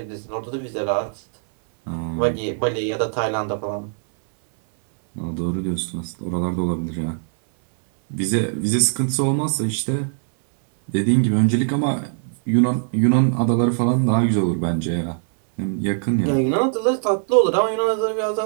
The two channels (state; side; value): silent; left; 64 dB below the other